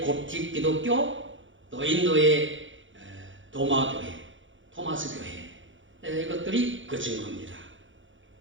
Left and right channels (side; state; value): left; late; 0.56 ms